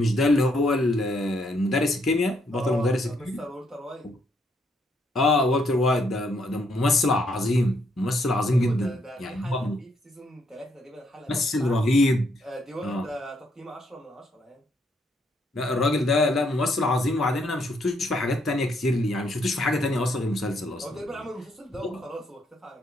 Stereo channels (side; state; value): both; normal; correlation 0.73